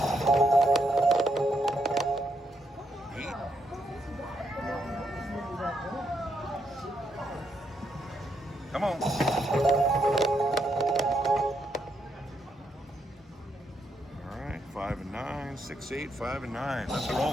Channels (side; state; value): both; normal; correlation 0.78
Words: 8. Come on. All right, 5 and 9, 6, 8, 5 and 9. Let's